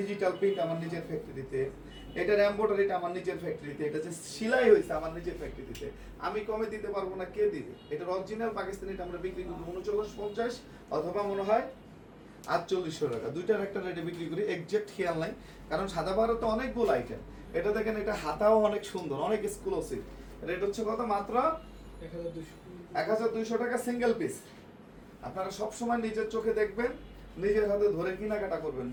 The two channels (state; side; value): identical; both; correlation 1.00